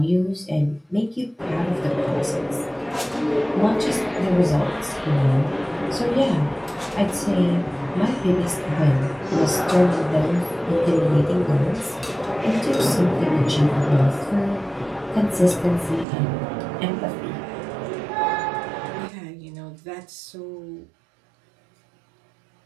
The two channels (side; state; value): left; drops out; at 16.1 s